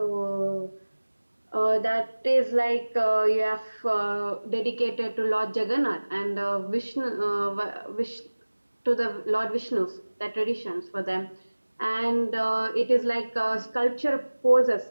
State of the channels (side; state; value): both; inverted; correlation -1.00